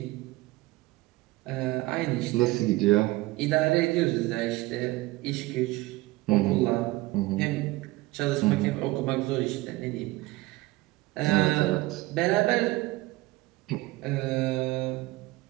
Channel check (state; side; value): quieter; left; 20.0 dB